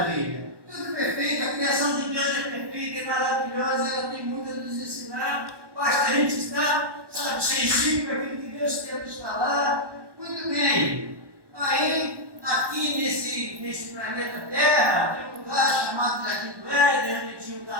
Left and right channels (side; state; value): left; late; 1.1 ms